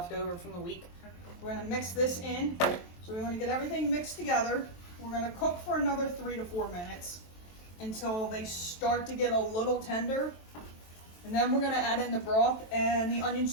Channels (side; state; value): right; late; 23 ms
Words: over from the week. We're gonna mix this in. So we wanna get everything mixed together. We're gonna cook for another 3 to 4 minutes until they start to get a little tender. And then we're gonna add in the broth and the onion